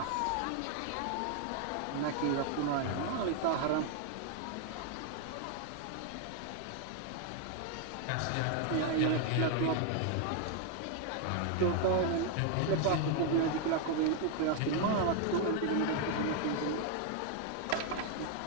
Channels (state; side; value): different; both; correlation 0.00